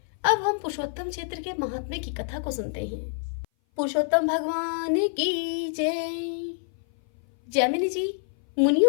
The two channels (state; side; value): silent; right; 57 dB below the other